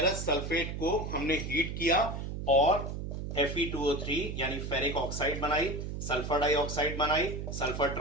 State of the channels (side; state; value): right; noise; hum, 5 dB below the sound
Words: सल्फेट को हमने हीट किया और Fe2O3 यानी फेरिक ऑक्साइड बनाई, सल्फर डाइऑक्साइड बनाई, सल्फर